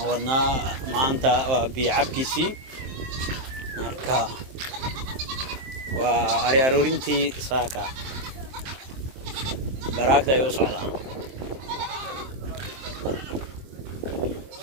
wadnaa maanta waa biicabkiisii marka waa ari aroorintii saaka baraagta ay u socdaan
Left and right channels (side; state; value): left; late; 23 ms